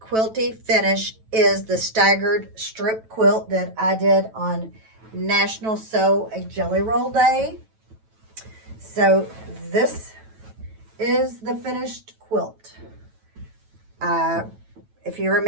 quilty finish is the staggered strip quilt that I did on National Sew a Jelly Roll Day. So this is the finished quilt. If you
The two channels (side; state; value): left; late; 9.1 ms